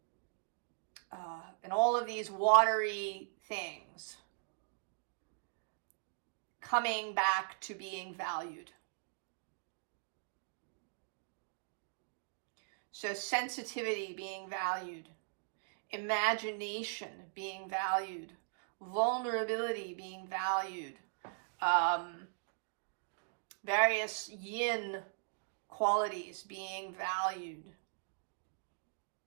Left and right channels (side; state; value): left; silent; digital silence